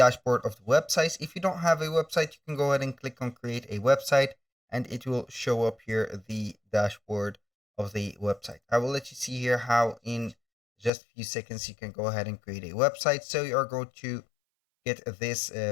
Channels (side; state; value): right; drops out; at 10.9 s